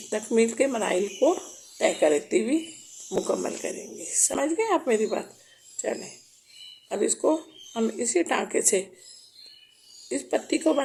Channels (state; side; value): identical; both; correlation 1.00